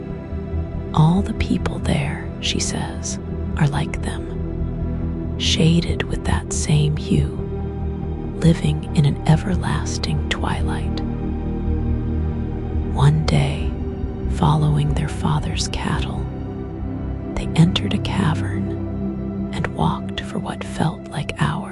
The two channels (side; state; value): both; identical; correlation 1.00